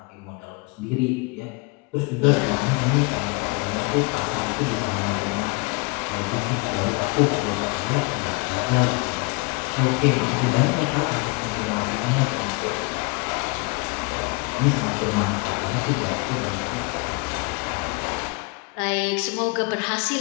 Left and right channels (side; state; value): right; quieter; 29.1 dB